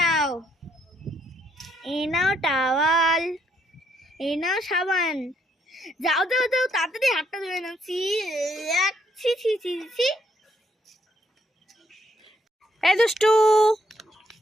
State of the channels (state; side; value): normal; both; correlation 0.72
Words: এ নাও টাওয়াল, এ নাও সাবান, যাও যাও যাও তাড়াতাড়ি হাতটা ধুয়ে নাও। ছি ছি ছি ছি ছি। এই দুষ্টু,